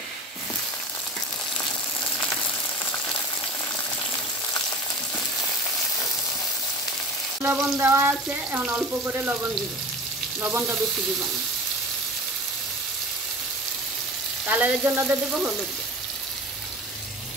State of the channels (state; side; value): normal; both; correlation 0.36